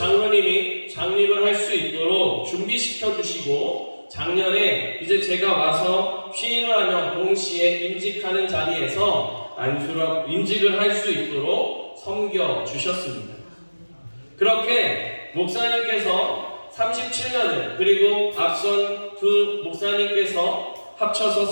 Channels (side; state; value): both; inverted; correlation -1.00